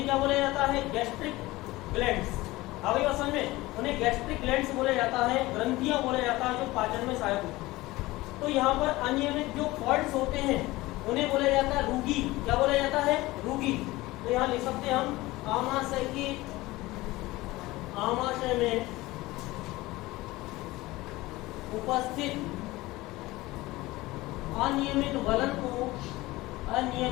क्या बोला जाता है? Gastric glands. अभी समझ में? उन्हें गैस्ट्रिक ग्लैंड्स बोला जाता है, ग्रंथियां बोला जाता है, जो पाचन में सहायक होती है। तो यहाँ पर अनियमित जो फॉल्ट्स होते हैं उन्हें बोला जाता है रूगी। क्या बोला जाता है? रूगी। तो यहाँ लिख सकते हैं हम, आमाशय में उपस्थित अनियमित बलनों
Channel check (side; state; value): right; quieter; 19.4 dB